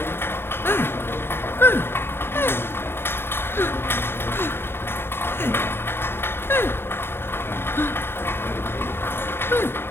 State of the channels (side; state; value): right; late; 0.11 ms